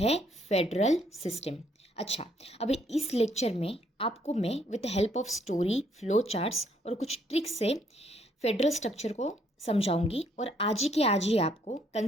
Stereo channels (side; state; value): both; normal; correlation 0.69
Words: फेडरल सिस्टम। अच्छा, अभी इस लेक्चर में आपको मैं with help of story, flow charts और कुछ ट्रिक्स से फेडरल स्ट्रक्चर को समझाऊंगी और आज के आज ही आपको